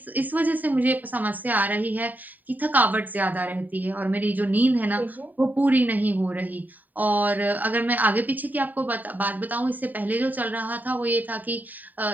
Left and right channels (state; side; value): late; left; 0.085 ms